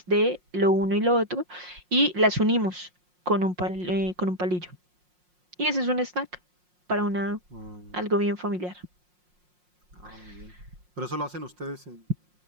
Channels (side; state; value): left; late; 5.6 ms